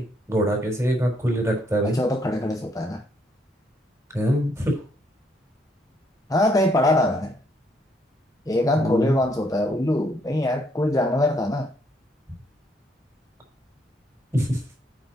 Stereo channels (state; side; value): normal; both; correlation 0.70